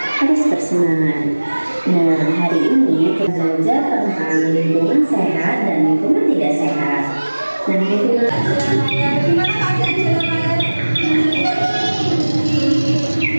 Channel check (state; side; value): inverted; both; correlation -1.00